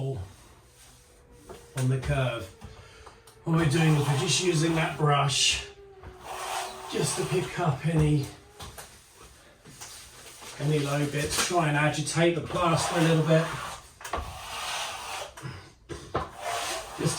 on the curve. What we're doing is we're just using that brush just to pick up any low bits, try and agitate the plaster a little bit just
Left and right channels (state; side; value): identical; both; correlation 1.00